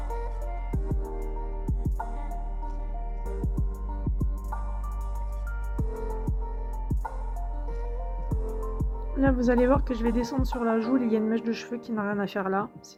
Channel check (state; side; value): identical; both; correlation 1.00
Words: Là, vous allez voir que je vais descendre sur la joue. Il y a une mèche de cheveux qui n'a rien à faire là.